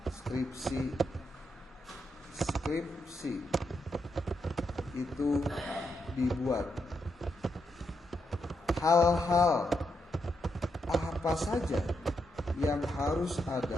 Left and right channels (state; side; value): normal; both; correlation 0.82